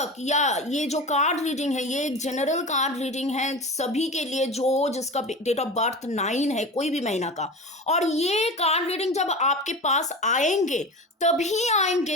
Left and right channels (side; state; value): both; normal; correlation 0.30